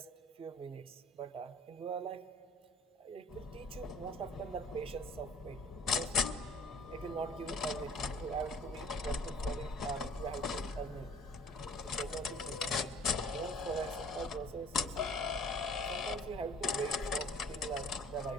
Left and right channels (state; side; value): normal; both; correlation 0.51